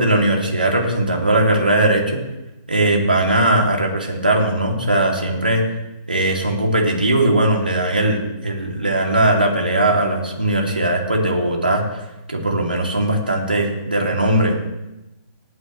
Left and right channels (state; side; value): inverted; both; correlation -0.58